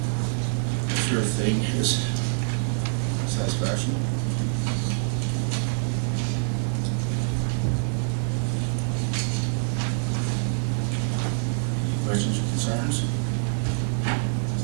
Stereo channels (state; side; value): silent; left; digital silence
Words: make sure everything is satisfaction. Any questions or concerns?